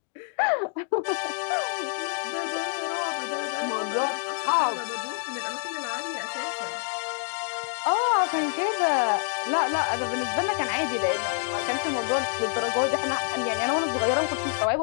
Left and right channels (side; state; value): right; silent; 60 dB below the other